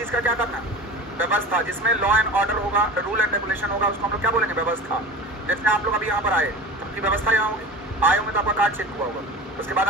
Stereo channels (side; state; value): both; normal; correlation 0.33